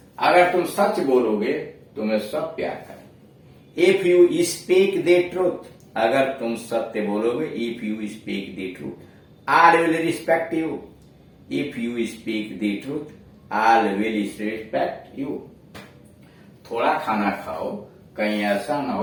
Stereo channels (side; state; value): both; identical; correlation 1.00